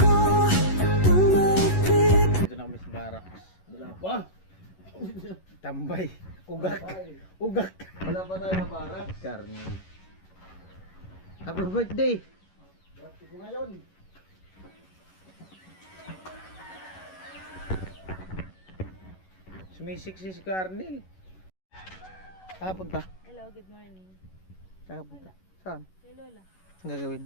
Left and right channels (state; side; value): late; right; 11 ms